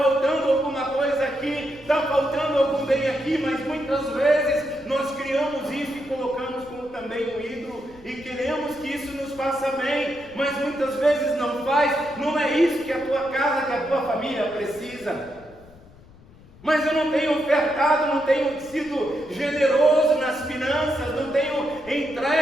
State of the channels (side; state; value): left; noise; rumble, 23 dB below the sound